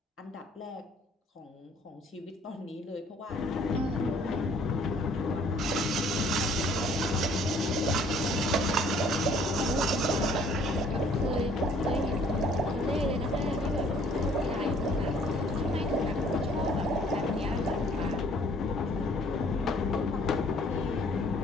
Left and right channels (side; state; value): both; normal; correlation 0.58